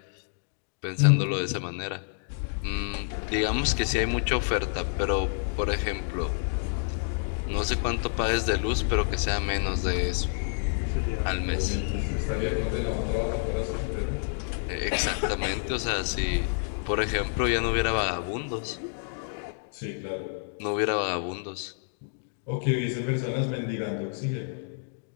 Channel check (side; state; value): right; silent; digital silence